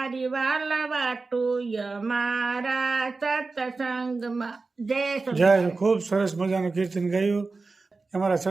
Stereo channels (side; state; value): left; quieter; 3.9 dB